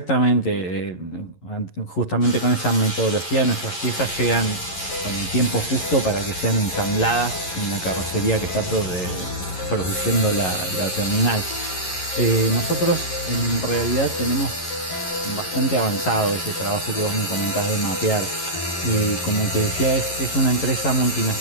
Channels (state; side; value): late; right; 11 ms